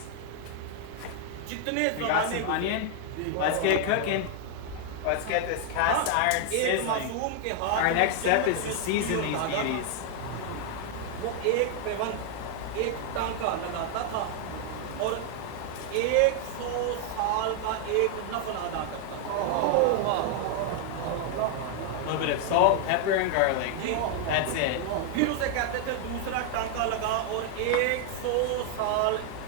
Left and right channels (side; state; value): both; different; correlation 0.00